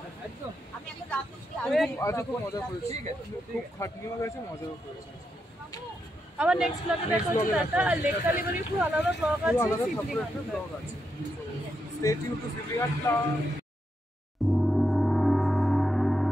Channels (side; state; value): both; normal; correlation 0.83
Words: আজকে খুব মজা করেছি, খুব খাটনিও গেছে, মজাও করেছে। আবার নেক্সট ব্লগে দেখা হচ্ছে। টাটা। আর লেক কালীবাড়ির খুব আলাদা ব্লগ আছে, আলাদা শিবলিঙ্গ ব্লগ আছে। Stay tune to শিবলিঘাট।